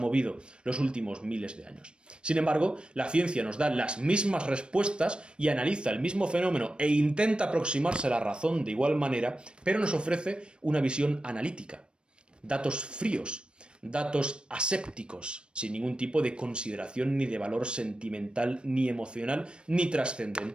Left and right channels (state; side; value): late; left; 0.055 ms